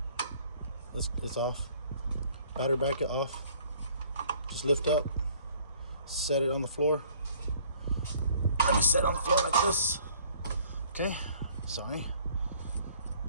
it's off. Battery bracket off. Just lift up, set it on the floor. Let me set it on the floor like this. Okay, sorry.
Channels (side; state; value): both; inverted; correlation -0.57